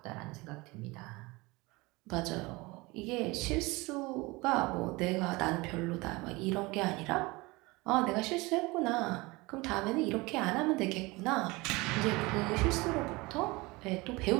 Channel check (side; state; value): left; quieter; 23.4 dB